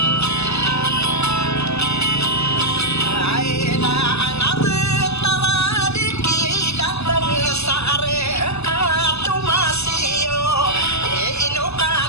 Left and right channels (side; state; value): right; late; 0.80 ms